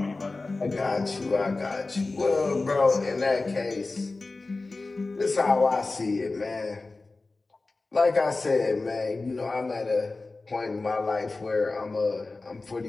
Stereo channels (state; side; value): quieter; right; 3.5 dB